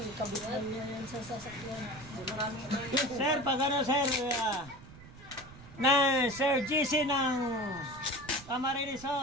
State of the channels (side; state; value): right; noise; rumble, 18 dB below the sound